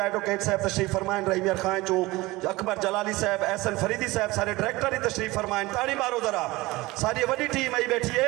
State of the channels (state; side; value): quieter; left; 20.6 dB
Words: एडवोकेट साहब तशरीफ फरमाइन, रहीम यार खां चो अकबर जलाली साहब, एहसन फरीदी साहब, सारे डायरेक्टर ही तशरीफ फरमाइन। ताड़ी मारो जरा, सारी वही टीम आई बैठी